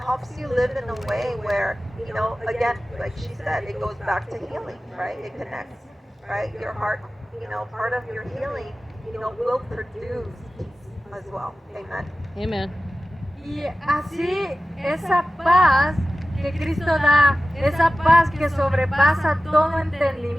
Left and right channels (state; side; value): normal; both; correlation 0.95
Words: you live in a way where, again, like she said, it goes back to healing, right? It connects, right? Your heart, part of your healing, will produce peace as well. Amen. Amen. Y así esa paz que Cristo da, esa paz que sobrepasa todo